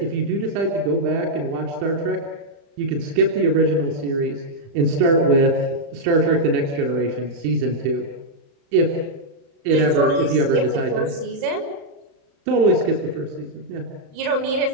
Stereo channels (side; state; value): left; late; 35 ms